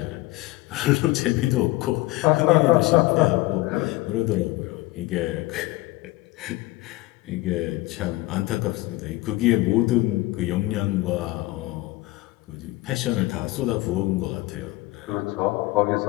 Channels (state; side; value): quieter; right; 19.6 dB